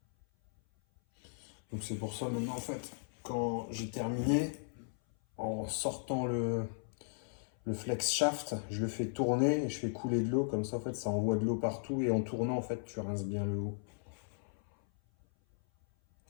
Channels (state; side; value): silent; right; 54 dB below the other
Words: Donc c'est pour ça, maintenant, en fait, quand j'ai terminé, en sortant le flex shaft, je le fais tourner et je fais couler de l'eau, comme ça en fait ça envoie de l'eau partout et en tournant en fait tu rinces bien le haut.